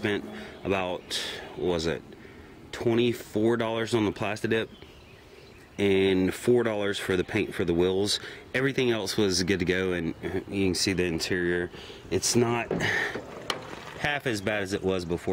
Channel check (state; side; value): identical; both; correlation 1.00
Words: about, what was it, $24 on the plastid-dip and $4 for the paint for the wheels. Everything else was good to go, and you can see the interior. It's not half as bad as it was